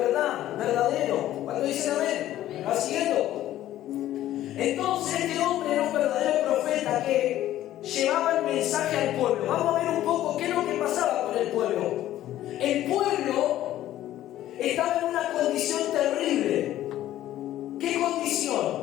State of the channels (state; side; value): quieter; right; 13.4 dB